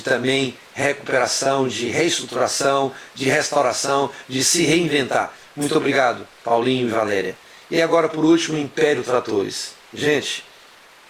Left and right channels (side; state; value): both; identical; correlation 1.00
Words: também recuperação, de reestruturação, de restauração, de se reinventar. Muito obrigado, Paulinho e Valéria. E agora, por último, Império Tratores. Gente,